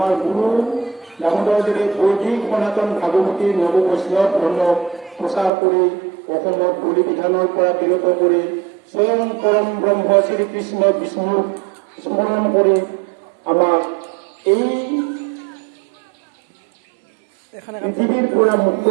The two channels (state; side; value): drops out; left; at 5.5 s